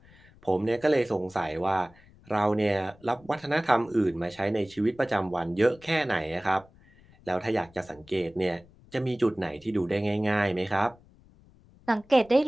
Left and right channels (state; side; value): noise; left; rumble, 26 dB below the sound